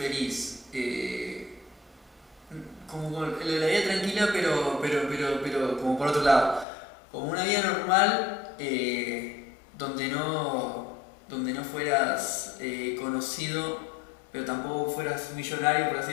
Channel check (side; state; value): right; drops out; at 6.7 s